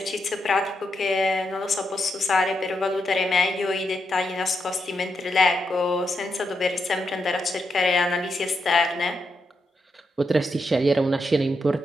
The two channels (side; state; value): both; normal; correlation 0.83